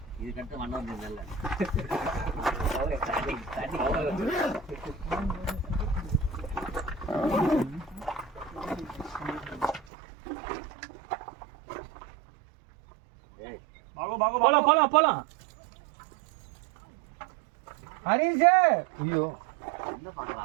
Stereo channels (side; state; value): left; drops out; at 9.9 s